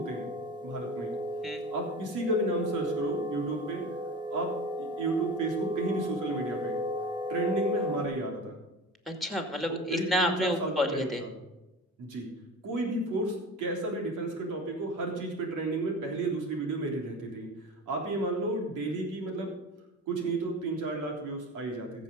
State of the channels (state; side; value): normal; both; correlation 0.33